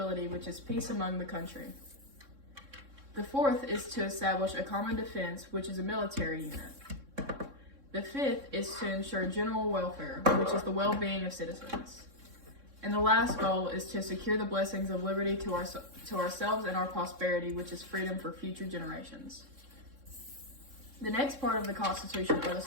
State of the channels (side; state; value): left; late; 3.6 ms